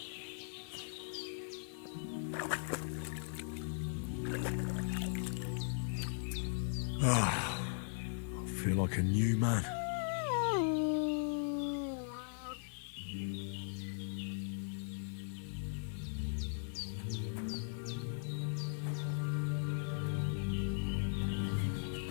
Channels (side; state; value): right; silent; digital silence